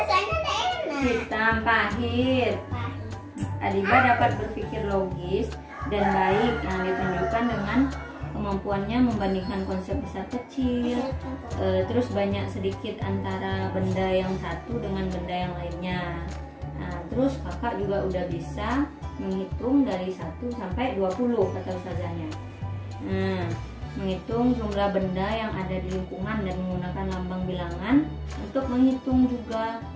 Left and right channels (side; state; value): both; identical; correlation 1.00